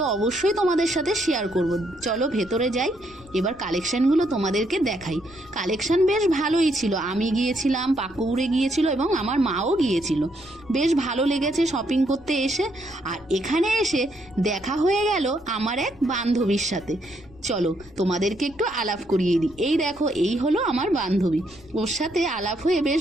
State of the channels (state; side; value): noise; left; rumble, 24 dB below the sound